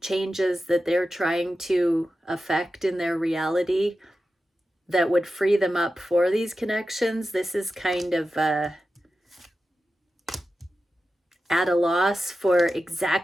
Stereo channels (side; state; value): both; normal; correlation 0.92